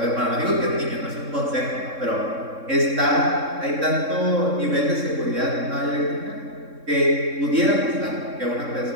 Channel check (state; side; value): late; left; 3.6 ms